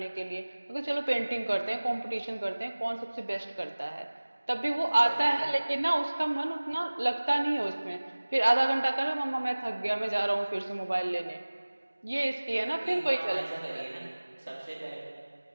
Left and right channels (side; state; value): both; inverted; correlation -1.00